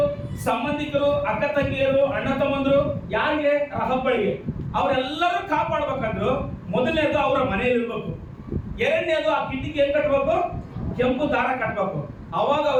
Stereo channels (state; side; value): identical; both; correlation 1.00